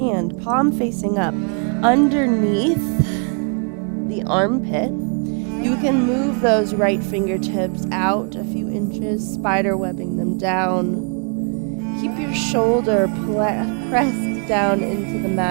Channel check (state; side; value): quieter; left; 38.9 dB